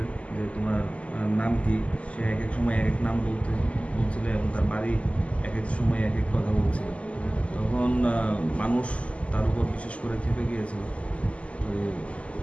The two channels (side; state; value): right; late; 0.062 ms